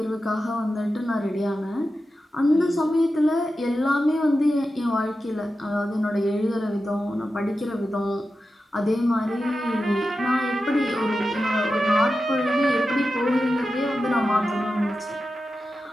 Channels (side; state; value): both; normal; correlation 0.91